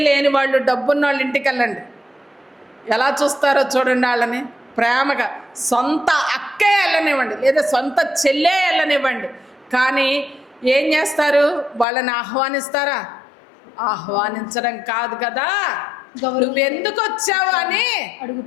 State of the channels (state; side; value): drops out; right; at 11.9 s